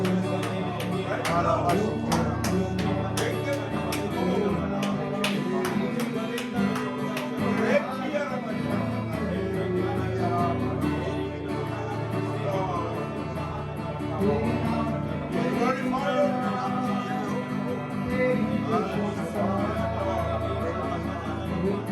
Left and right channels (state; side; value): identical; both; correlation 1.00